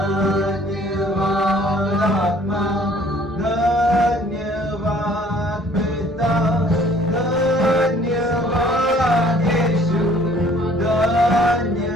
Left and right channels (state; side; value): normal; both; correlation 0.56